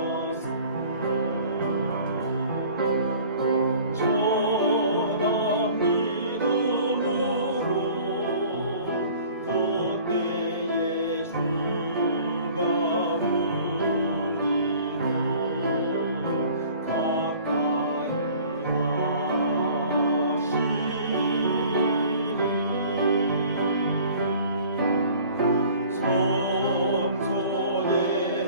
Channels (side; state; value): both; inverted; correlation -0.49